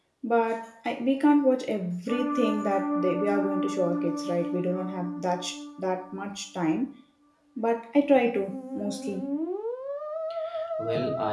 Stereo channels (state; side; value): identical; both; correlation 1.00